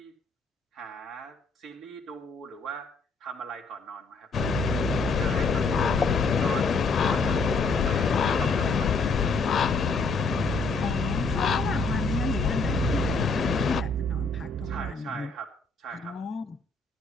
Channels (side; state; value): right; quieter; 3.9 dB